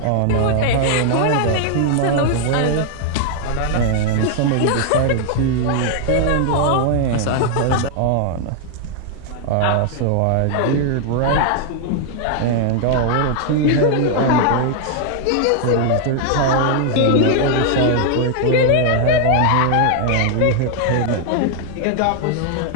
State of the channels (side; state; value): both; different; correlation 0.00